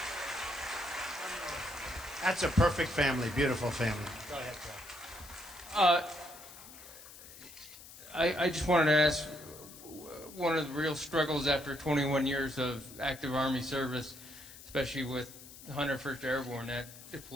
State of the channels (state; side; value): noise; left; hiss, 17 dB below the sound